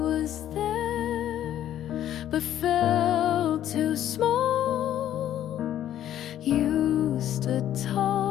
there but felt too small. You stood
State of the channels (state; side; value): quieter; right; 11.5 dB